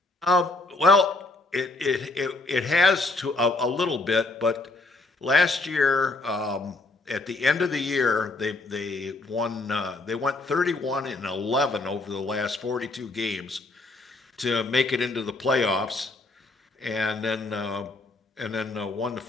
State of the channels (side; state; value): right; quieter; 3.2 dB